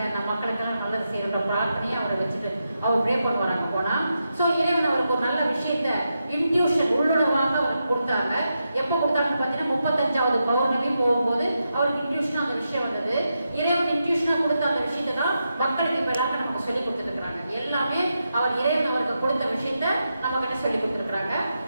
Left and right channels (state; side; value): inverted; both; correlation -0.87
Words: நம்ம மக்களுக்கெல்லாம் நல்லது செய்யற பிரார்த்தனையை அவரை வச்சுட்டு அவர் ப்ரே பண்ணுவாங்க போனா. ஸோ இறைவன் அவருக்கு ஒரு நல்ல விஷயத்த இன்ட்யூஷன் உள்ளுணர்வாக அவருக்கு கொடுத்தாங்க. எப்போ கொடுத்தாங்கன்னு பார்த்தீங்கன்னா 35வது பௌர்ணமி போகும்போது அவருக்கு இன்ட்யூஷனாக அந்த விஷயம் வந்தது. இறைவன் இன்ட்யூஷனாக கொடுத்த அந்த விஷயத்தை தான் மக்களுக்கு இப்போ எல்லாருக்கும் நமக்கு சொல்லி கொடுத்துருக்குறாங்க. எல்லாமே அவர் இறைவன் அவருக்கு கொடுத்த விஷயத்த நம்ம கிட்ட சொல்லி கொடுத்துருக்குறாங்க.